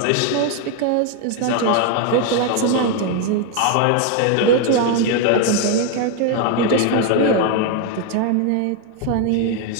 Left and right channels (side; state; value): both; different; correlation 0.01